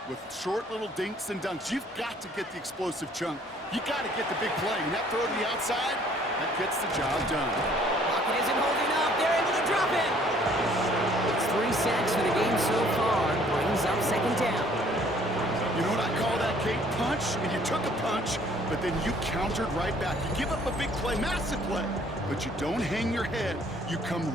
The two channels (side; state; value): both; normal; correlation 0.59